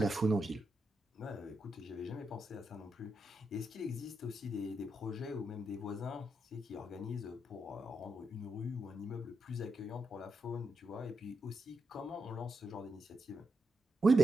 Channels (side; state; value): both; normal; correlation 0.84